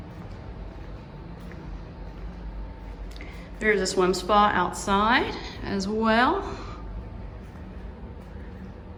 There's a swim spa outside as well.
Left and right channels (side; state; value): both; identical; correlation 1.00